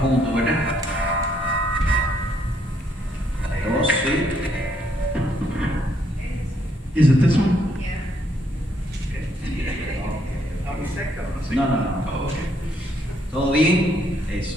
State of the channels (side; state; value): both; normal; correlation 0.71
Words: juntos, ¿verdad? Dos, sí. Is it this one? No. Oh, okay. ¿Todo bien? Eso.